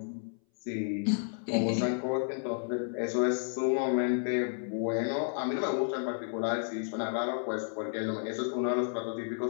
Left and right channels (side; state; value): right; silent; 57 dB below the other